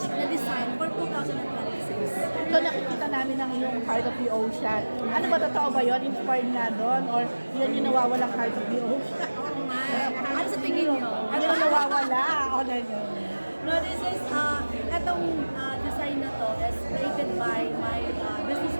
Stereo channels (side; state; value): both; inverted; correlation -1.00